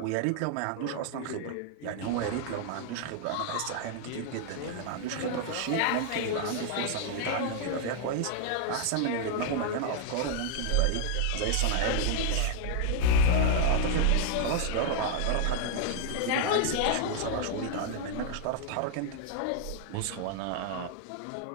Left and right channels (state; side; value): different; both; correlation 0.00